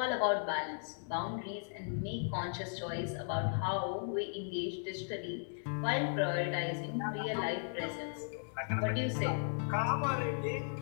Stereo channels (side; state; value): right; silent; digital silence